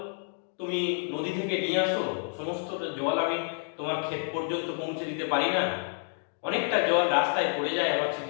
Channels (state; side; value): silent; right; 58 dB below the other